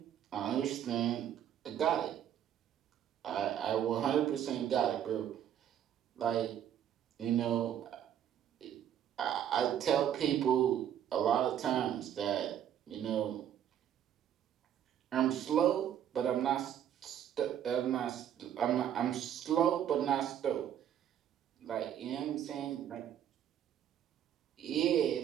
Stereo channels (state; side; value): quieter; left; 10.1 dB